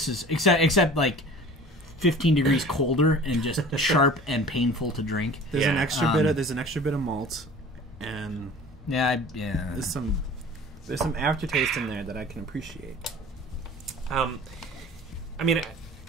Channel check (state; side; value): normal; both; correlation 0.43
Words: is except like 15 degrees colder and just sharp and painful to drink. There's an extra bit of malt, and there's some aftertaste in there that I can appreciate. I mean,